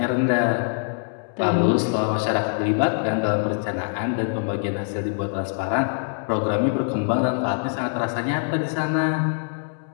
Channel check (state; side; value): silent; right; digital silence